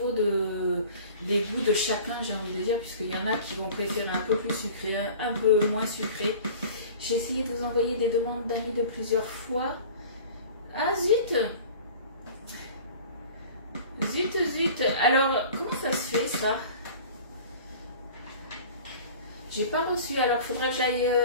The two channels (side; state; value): both; inverted; correlation -0.42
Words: des goûts de chacun, j'ai envie de dire, puisqu'il y en a qui vont préférer un peu plus sucré, un peu moins sucré. J'ai essayé de vous envoyer des demandes d'amis de plusieurs fois. Ah zut! Zut! Alors, comment ça se fait ça? J'ai pas reçu, alors il faudrait